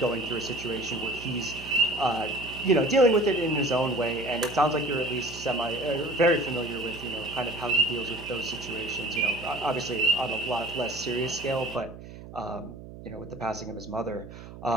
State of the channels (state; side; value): noise; right; hum, 14 dB below the sound